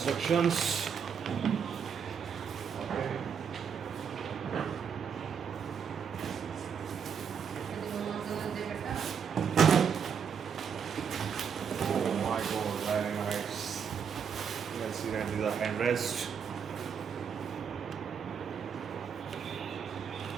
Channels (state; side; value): quieter; left; 7.1 dB